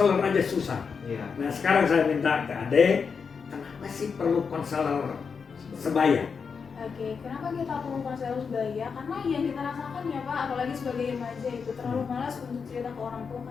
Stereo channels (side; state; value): right; quieter; 5.8 dB